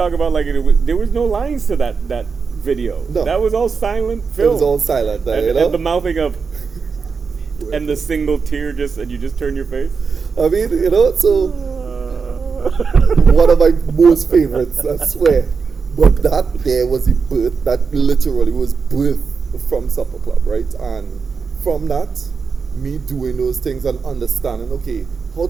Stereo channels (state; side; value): quieter; left; 5.3 dB